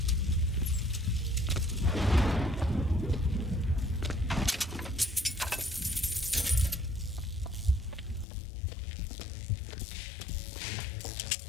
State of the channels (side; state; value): right; drops out; at 8.2 s